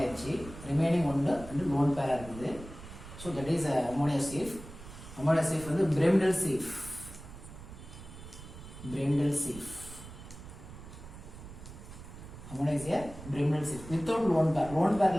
remaining ஒன்று வந்து lone pair இருக்குது. So that is ammonia safe. Ammonia safe வந்து Bremdel safe. Ammonia is a Bremdel safe without lone pair. Lone pair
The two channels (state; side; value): noise; right; rumble, 14 dB below the sound